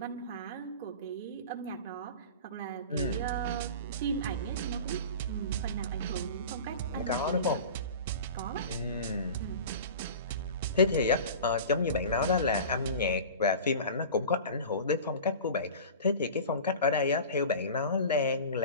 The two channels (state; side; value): inverted; both; correlation -0.35